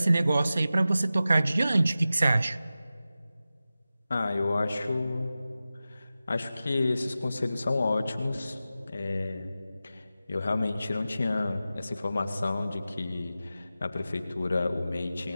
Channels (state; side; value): inverted; both; correlation -0.94